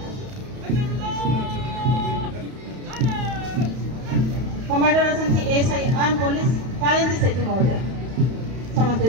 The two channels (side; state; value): left; late; 32 ms